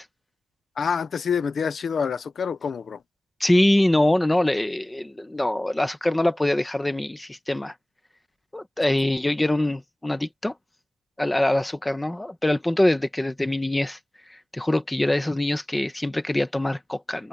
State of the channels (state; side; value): normal; both; correlation 0.98